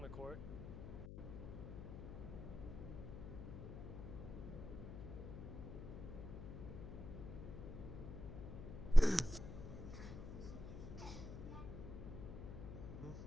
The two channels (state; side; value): noise; left; hum, 9 dB below the sound